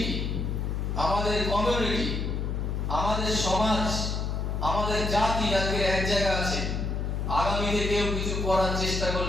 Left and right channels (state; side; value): noise; left; hum, 1 dB below the sound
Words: আমাদের কমিউনিটি, আমাদের সমাজ, আমাদের জাতি আজকে এক জায়গা আছে, আগামীতে কেউ কিছু করার চেষ্টা